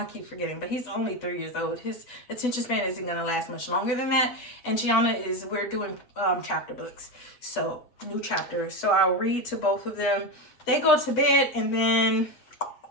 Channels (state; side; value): late; right; 8.0 ms